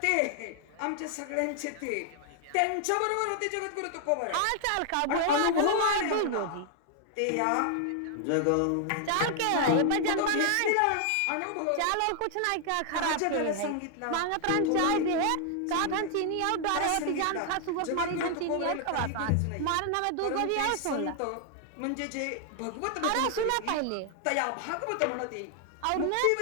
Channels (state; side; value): different; both; correlation 0.00